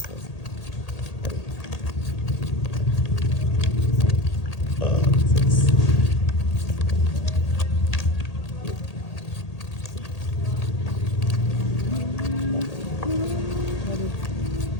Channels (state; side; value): late; right; 1.8 ms